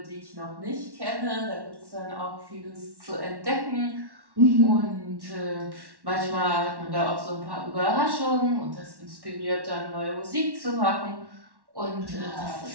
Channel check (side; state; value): left; late; 1.1 ms